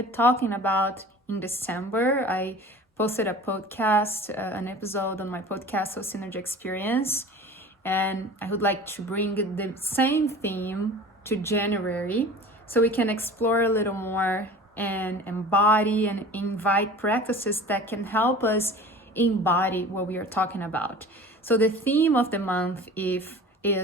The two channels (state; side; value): normal; both; correlation 0.40